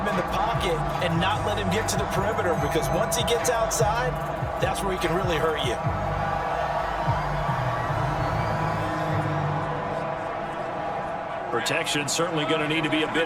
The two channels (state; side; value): identical; both; correlation 1.00